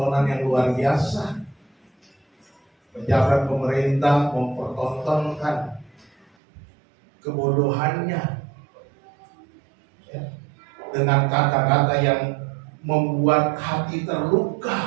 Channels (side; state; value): left; drops out; at 6.2 s